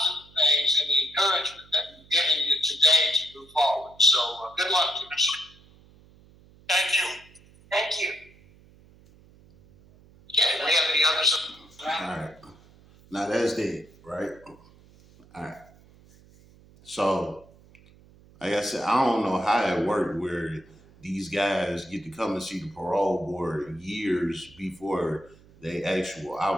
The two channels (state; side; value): noise; right; hum, 26 dB below the sound